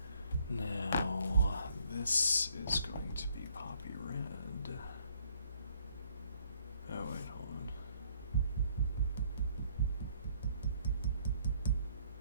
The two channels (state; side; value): inverted; both; correlation -0.65